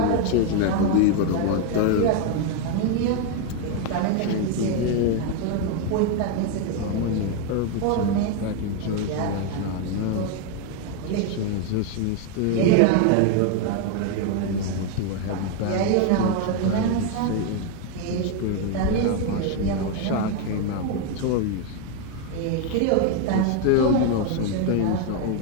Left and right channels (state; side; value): different; both; correlation 0.01